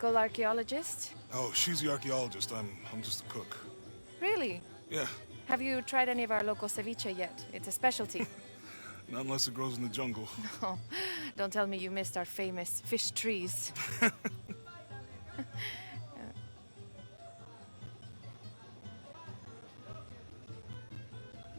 archaeologist. Oh, she's the archaeologist. I'm just a cook. Really? Yeah. Have you tried any of our local ceviche yet? It's a specialty. Not unless it grows in the jungle. Oh, don't tell me you missed our famous fish trees.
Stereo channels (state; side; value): inverted; both; correlation -1.00